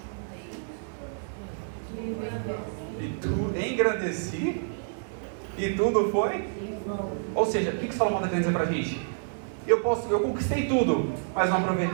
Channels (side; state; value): left; silent; 59 dB below the other